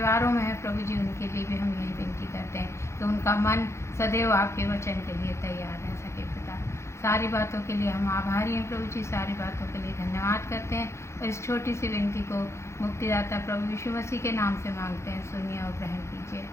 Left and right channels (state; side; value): late; right; 0.13 ms